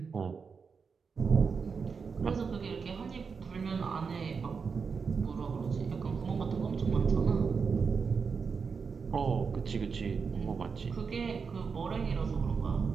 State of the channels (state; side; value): quieter; left; 5.5 dB